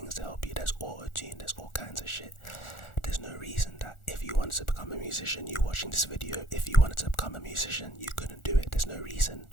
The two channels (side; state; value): right; late; 1.4 ms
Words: to help you. There's auto-tune, there's all kinds of shit. There's no reason that if you wanted to become a musician, you watching this video, if you wanted to become a musician, you couldn't do it. There's no reason